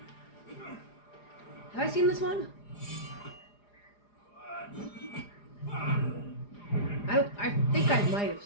Have I seen this one? guys might have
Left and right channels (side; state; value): right; late; 4.9 ms